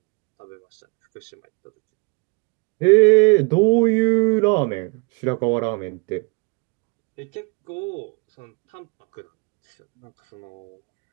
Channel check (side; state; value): left; quieter; 30.9 dB